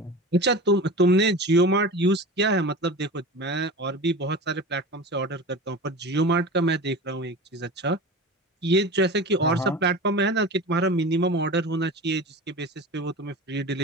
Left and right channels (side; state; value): both; normal; correlation 0.32